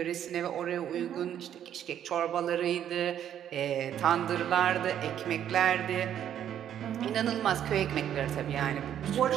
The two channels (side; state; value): left; quieter; 10.1 dB